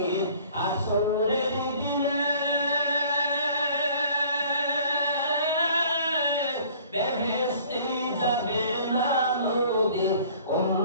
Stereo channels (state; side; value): inverted; both; correlation -0.52